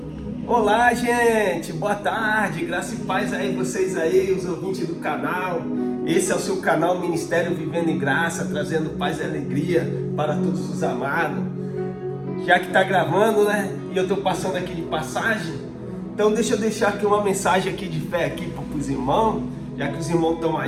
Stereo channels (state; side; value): identical; both; correlation 1.00